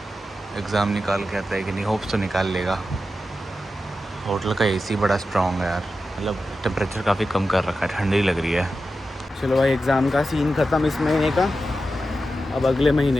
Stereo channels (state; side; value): normal; both; correlation 0.91